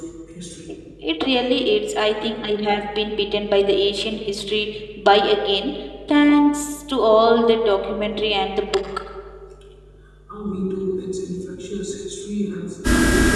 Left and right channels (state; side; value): identical; both; correlation 1.00